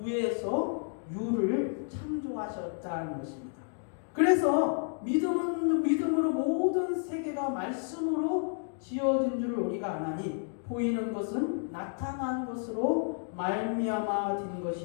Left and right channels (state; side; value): silent; right; 57 dB below the other